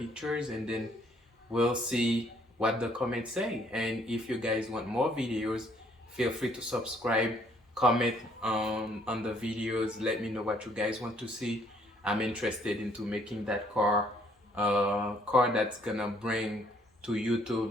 and then we'll see what the comments say. And if you guys want more videos, feel free to subscribe, comment on the videos, let me know what you guys want to see. I'm interested into making that car car that's gonna bring to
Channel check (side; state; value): both; normal; correlation 0.64